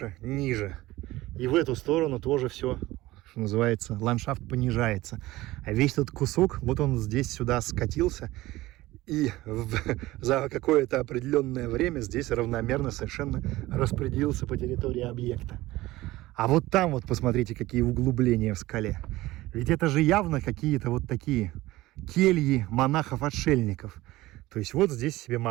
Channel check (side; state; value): left; quieter; 18.0 dB